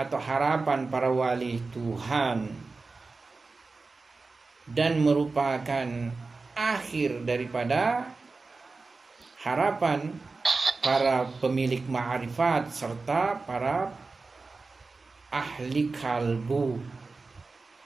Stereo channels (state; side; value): quieter; left; 3.9 dB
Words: harapan para wali Tuhan, dan merupakan akhir daripada harapan para pemilik ma'rifat serta para ahli kalbu.